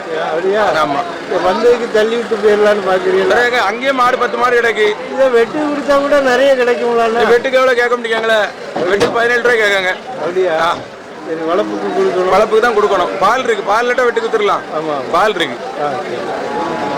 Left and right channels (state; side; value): identical; both; correlation 1.00